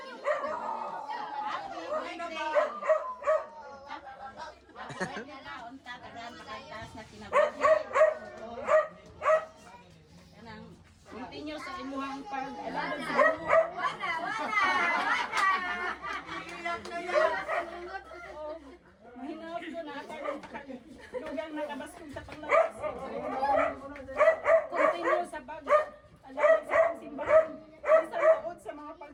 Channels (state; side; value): identical; both; correlation 1.00